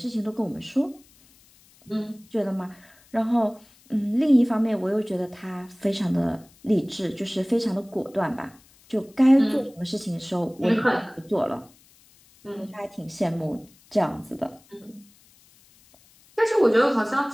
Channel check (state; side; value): noise; left; hiss, 29 dB below the sound